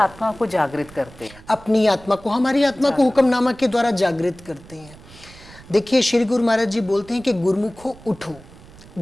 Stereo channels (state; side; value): noise; right; rumble, 21 dB below the sound